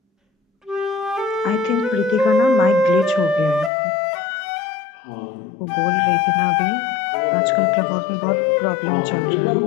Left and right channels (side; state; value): right; drops out; at 3.7 s